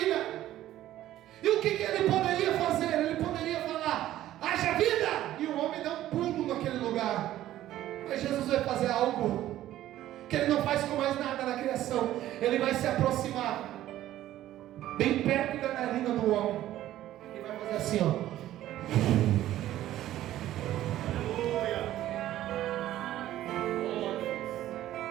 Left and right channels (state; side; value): quieter; left; 13.6 dB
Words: E o que Ele poderia fazer? Ele poderia falar, haja vida! E o homem dá um pulo naquele lugar. Mas Jesus vai fazer algo que Ele não faz com mais nada na criação. Ele vai se aproximar bem perto da narina do homem. E vai fazer assim, ó.